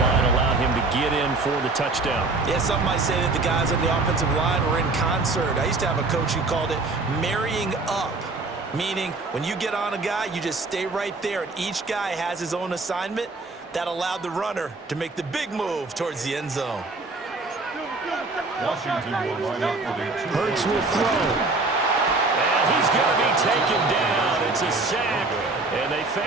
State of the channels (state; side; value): quieter; left; 3.4 dB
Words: allowed him to get in for the touchdown. Yeah, some might say that the guys on the offensive line were in concert. I used to have a coach who called it marrying up, meaning when you get on a guy, you just stay right there, and each guy has his own assignment. That allowed the runner to make the big move towards the end zone. Washington will line up for the 2. Hurts will throw. And he's going to be taken down. It's a sack, and they